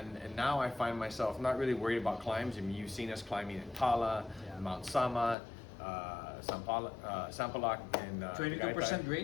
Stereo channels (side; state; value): right; drops out; at 5.4 s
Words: now I find myself not really worried about climbs. I mean, you've seen us climbing in Tala, Mount Sama, Sampaloc, and 22%